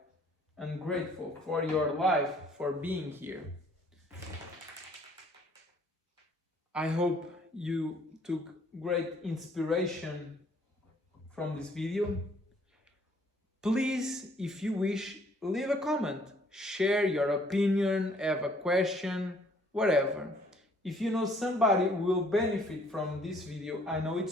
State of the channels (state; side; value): normal; both; correlation 0.61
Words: and grateful for your life, for being here. I hope you took great inspiration from this video. Please, if you wish, leave a comment, share your opinion, have a question, whatever. If you know somebody who will benefit from this video, I know